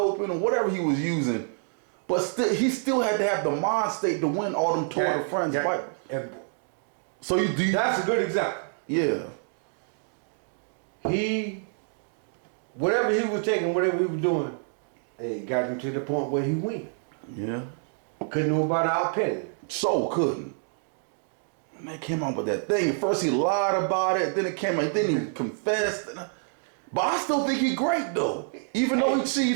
or whatever he was using, but he still had to have the mind state to win all them Tour de France fights. So that's a good example. Yeah. Whatever he was taking, whatever he was doing, got him to the point where he win. Yeah. Couldn't nobody outped him. So couldn't. And they came out with that thing. At first he lied about it, then it came out, then he confessed. But I still think he great though. Even though he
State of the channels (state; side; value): silent; left; 60 dB below the other